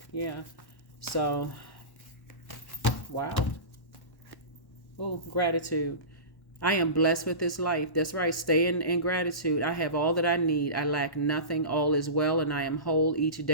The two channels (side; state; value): right; late; 1.1 ms